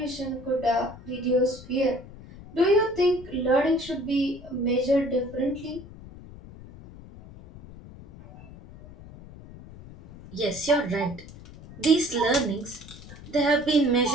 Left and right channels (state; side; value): noise; left; rumble, 17 dB below the sound